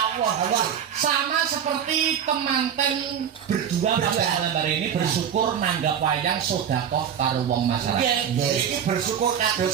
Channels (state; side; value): quieter; left; 8.5 dB